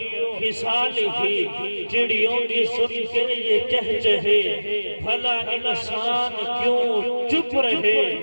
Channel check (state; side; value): inverted; both; correlation -1.00